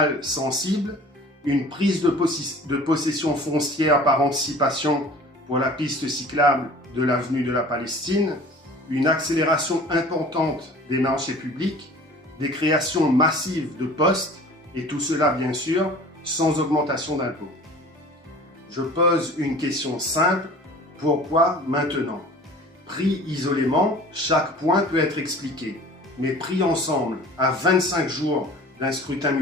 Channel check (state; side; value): normal; both; correlation 0.45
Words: sensibles, une prise de possession foncière par anticipation pour la piste cyclable de l'avenue de la Palestine, une accélération importante des marchés publics, des créations massives de postes, et tout cela bien sûr sans augmentation d'impôts. Je pose une question simple, pourquoi maintenant? Pris isolément, chaque point peut être expliqué, mais pris ensemble à 25 jours d'un scrutin